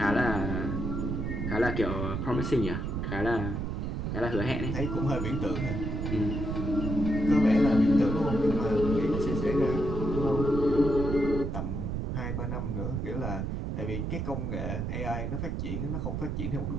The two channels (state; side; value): noise; right; rumble, 2 dB below the sound